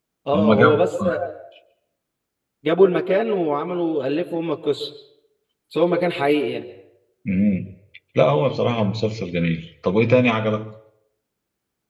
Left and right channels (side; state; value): both; identical; correlation 1.00